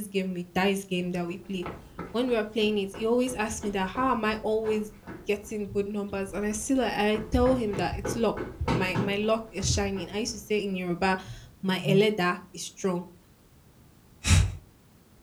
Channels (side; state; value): both; identical; correlation 1.00